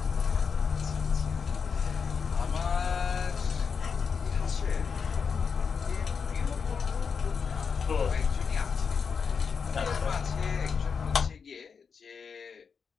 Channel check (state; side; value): quieter; right; 6.0 dB